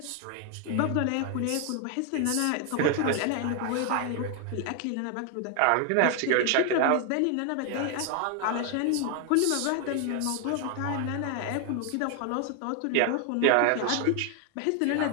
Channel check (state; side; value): different; both; correlation 0.00